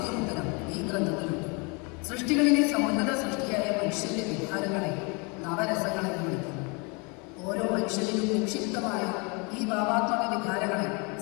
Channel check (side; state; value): right; quieter; 31.1 dB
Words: ഉത്തരം ഈ ഗ്രന്ഥത്തിലുണ്ട്. സൃഷ്ടികളിലെ സമുന്നത സൃഷ്ടിയായ മനുഷ്യന്റെ വികാരങ്ങളെ നവരസങ്ങളെ വിളിക്കുന്നു. ഓരോ മനുഷ്യനിലും നിക്ഷിപ്തമായ ഈ ഭാവാത്മക വികാരങ്ങളെ